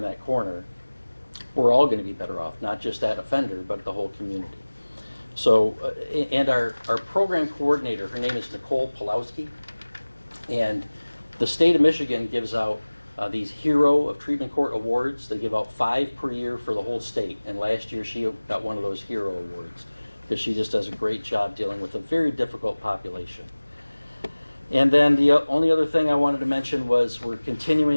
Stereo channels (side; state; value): both; inverted; correlation -1.00